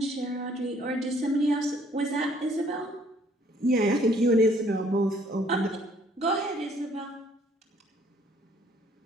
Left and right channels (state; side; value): normal; both; correlation 0.62